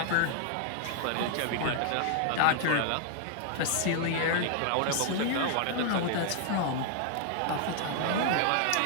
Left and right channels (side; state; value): both; different; correlation 0.00